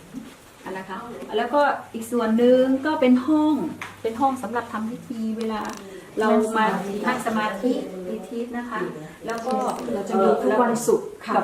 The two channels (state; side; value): identical; both; correlation 1.00